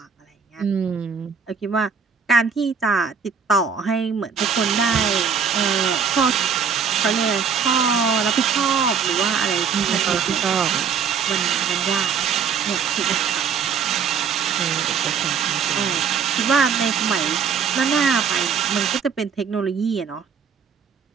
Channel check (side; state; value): left; quieter; 6.5 dB